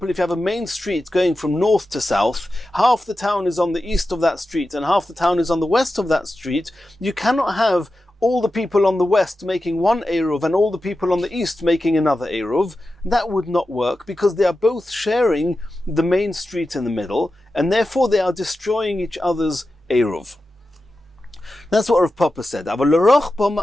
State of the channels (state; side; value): normal; both; correlation 0.92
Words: if you have a main street going from north to south, half the town is on the east of that street and half the town is on the west of that street, you cannot have all the people on the west making one eruv and all the people on the east making another eruv. That would not work because they are both sharing the main street in the middle, and therefore they are destroying each other's eruv. That's what Rav Papa said.